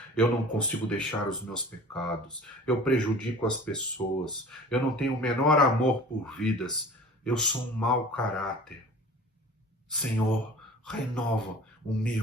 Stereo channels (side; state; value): both; normal; correlation 0.43